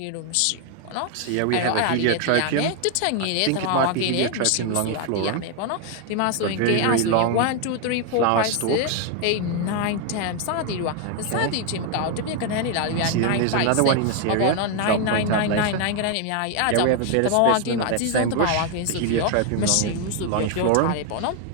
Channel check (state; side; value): different; both; correlation 0.01